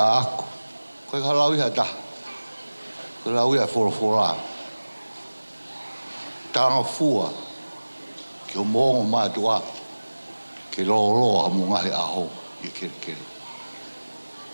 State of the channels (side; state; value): both; inverted; correlation -1.00